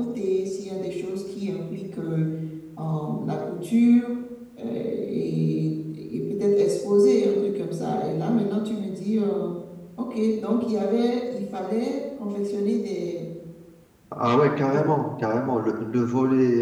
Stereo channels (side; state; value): both; identical; correlation 1.00